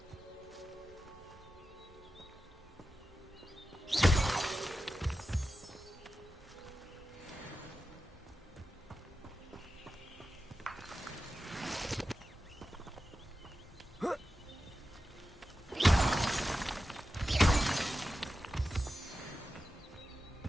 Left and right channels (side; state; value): both; normal; correlation 0.92